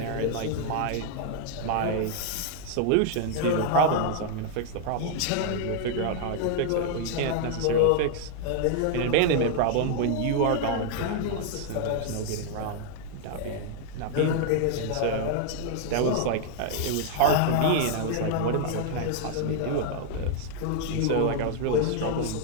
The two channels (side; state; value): both; different; correlation 0.00